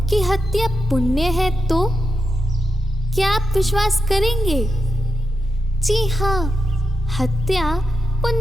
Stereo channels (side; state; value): both; normal; correlation 0.88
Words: कि हत्या पुण्य है तो क्या आप विश्वास करेंगे? जी हाँ, हत्या